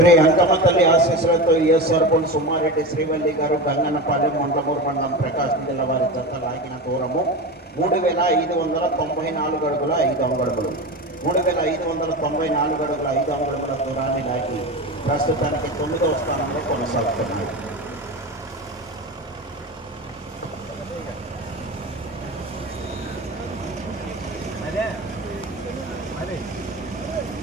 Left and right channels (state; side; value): normal; both; correlation 0.25